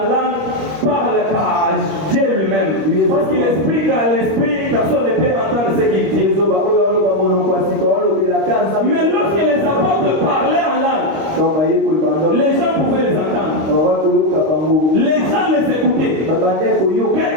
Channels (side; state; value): left; late; 25 ms